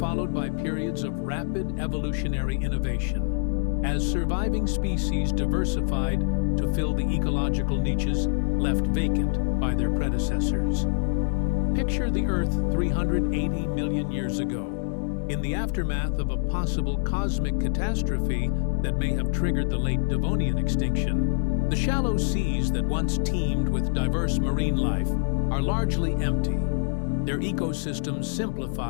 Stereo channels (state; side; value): silent; right; digital silence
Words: by periods of rapid evolutionary innovation, as surviving species diversified to fill the ecological niches left vacant by their predecessors. Picture the Earth 380 million years ago. In the aftermath of a possible cosmic catastrophe that may have triggered the late Devonian extinction, the shallow seas that once teemed with diverse marine life are largely empty, their ecosystems